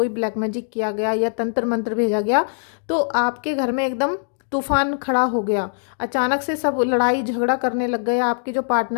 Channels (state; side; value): silent; right; digital silence